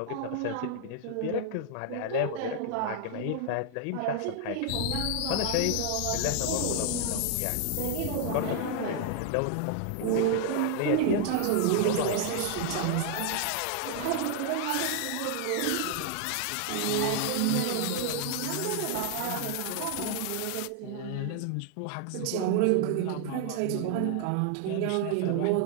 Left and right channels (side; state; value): both; different; correlation 0.00